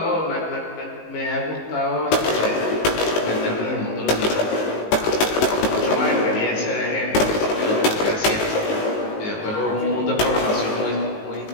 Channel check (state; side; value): late; right; 19 ms